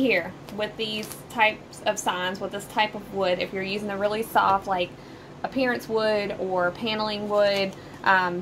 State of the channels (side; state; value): both; identical; correlation 1.00